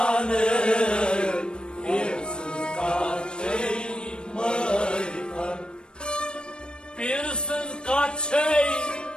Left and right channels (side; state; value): right; late; 0.053 ms